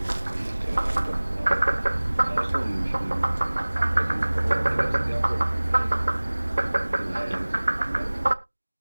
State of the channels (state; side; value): inverted; both; correlation -1.00